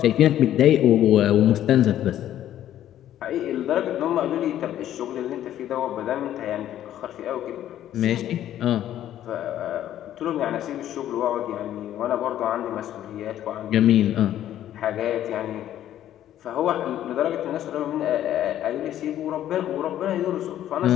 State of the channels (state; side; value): quieter; right; 11.9 dB